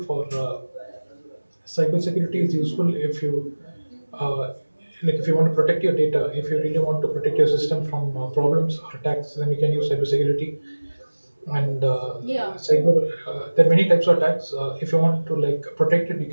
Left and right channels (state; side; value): inverted; both; correlation -1.00